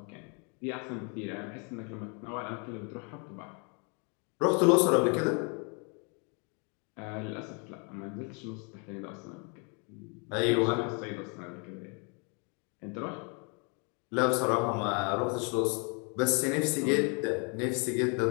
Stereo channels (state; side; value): quieter; right; 35.6 dB